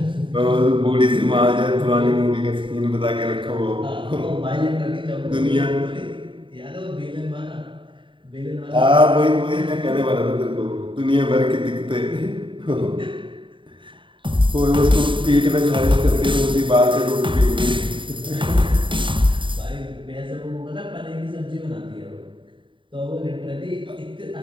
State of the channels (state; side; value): late; left; 0.24 ms